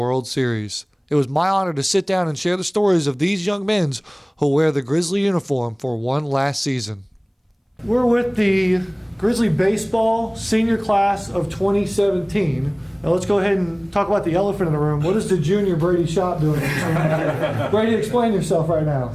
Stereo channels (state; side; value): identical; both; correlation 1.00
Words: Series. It was my honor to sit down and share the stories of these young men who wear the Grizzly uniform for one last season. We're with the Grizzly Baseball Senior Class of 2017. Now let's go ahead and talk about the elephant in the room. What is the junior Brady Shop doing? Brady, explain yourself right now.